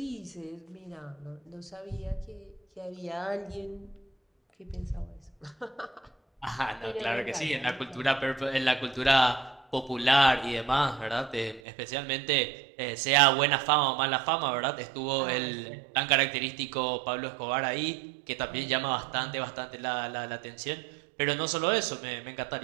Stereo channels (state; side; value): drops out; left; at 11.6 s